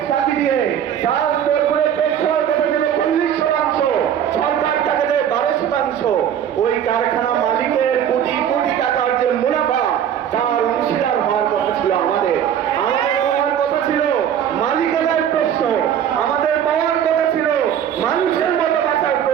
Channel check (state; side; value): quieter; left; 9.5 dB